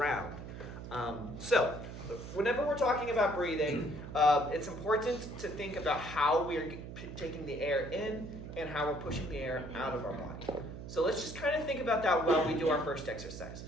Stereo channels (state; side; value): noise; right; hum, 10 dB below the sound